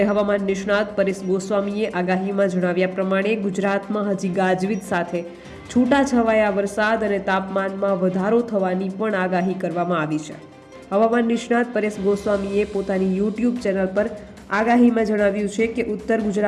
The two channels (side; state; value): both; identical; correlation 1.00